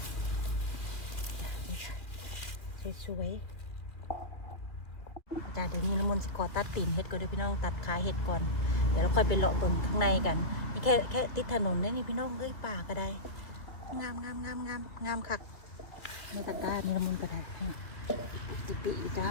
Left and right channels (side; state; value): right; late; 2.6 ms